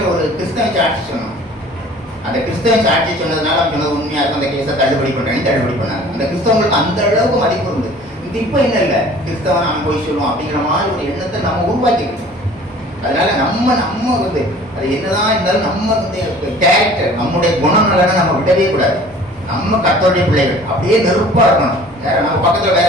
ஒரு கிறிஸ்தவ சாட்சி சொன்னோம். அந்த கிறிஸ்தவ சாட்சி சொன்னதுனால அவங்க சொன்னது உண்மையாக இருக்கும், அந்த கேஸை தள்ளுபடி பண்ணாங்க. அந்த கிறிஸ்தவங்களுக்கு அந்த அளவுக்கு மதிப்பு இருந்து. இப்போ என்ன இல்லை, கிறிஸ்தவன் அவன் போய் சொல்லுவோம் அப்படிங்கிற மாதிரி ஒரு எண்ணத்தை நம்ம உருவாக்கிக்கணும். அதனால நம்ம வந்து அது என்னதான் இருந்தாலும் நம்ம வந்து கேரக்டர், நம்முடைய குணநலனை நம்ம விடவே கூடாது. நம்ம கர்த்தருடைய பிள்ளைகள் அப்படியே நெருப்பா இருக்கணும். வேற நம்ம பக்கத்துல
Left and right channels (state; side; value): normal; both; correlation 0.48